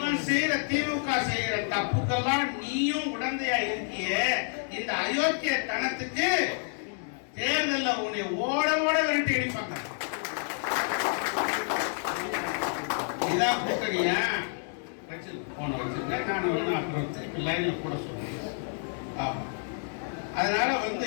செய்யற திமுக செய்யற தப்புக்கெல்லாம் நீயும் உடந்தையா இருக்கிய. இந்த அயோக்கிய தனத்துக்கு தேர்தல்ல உன்னை ஓட ஓட விரட்டி அடிப்பாங்க. இதான் கூட்டணியா? போன வச்சிருக்கேன் நான் அப்புறம் திருப்பி லைன்ல கூட சொல்றேன். அதனால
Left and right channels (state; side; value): silent; right; 58 dB below the other